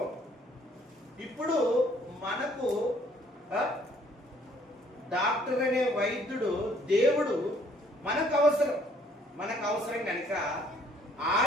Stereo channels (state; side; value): normal; both; correlation 0.62